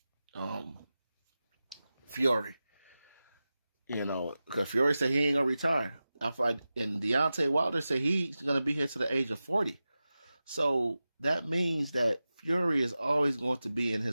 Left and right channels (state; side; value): inverted; both; correlation -0.94